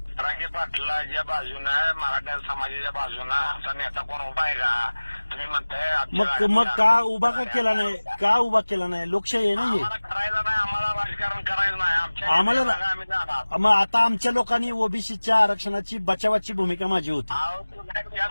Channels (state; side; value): inverted; both; correlation -1.00